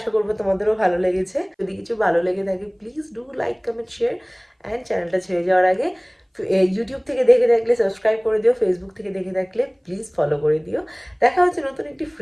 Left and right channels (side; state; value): both; identical; correlation 1.00